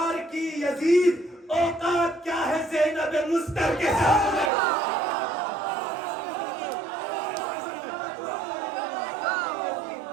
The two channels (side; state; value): left; drops out; at 4.5 s